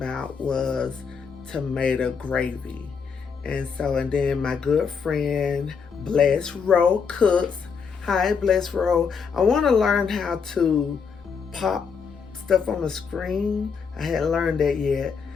was tomato gravy. And then my good friend Bless Row cooks. Hi, Bless Row. I want to learn how to pop stuff on the screen. I hadn't learned that yet.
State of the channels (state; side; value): quieter; right; 6.0 dB